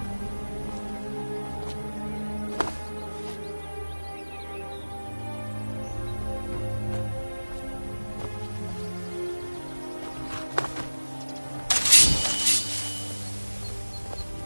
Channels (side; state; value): both; inverted; correlation -1.00